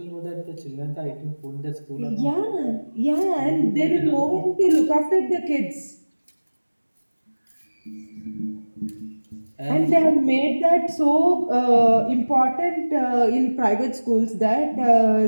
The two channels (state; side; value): inverted; both; correlation -1.00